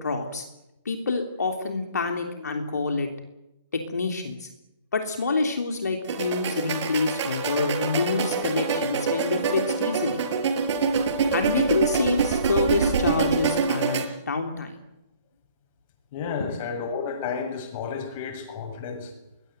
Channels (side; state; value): both; inverted; correlation -0.55